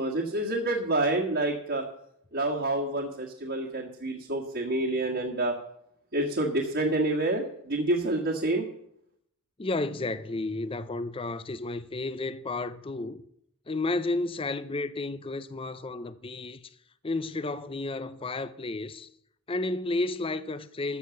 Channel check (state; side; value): normal; both; correlation 0.24